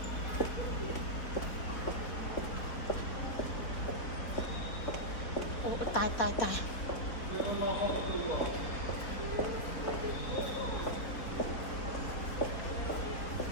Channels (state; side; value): late; right; 3.7 ms